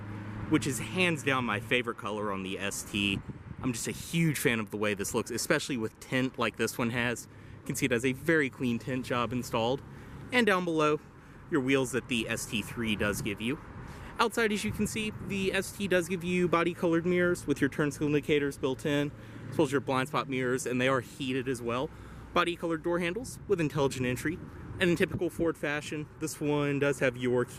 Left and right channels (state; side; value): identical; both; correlation 1.00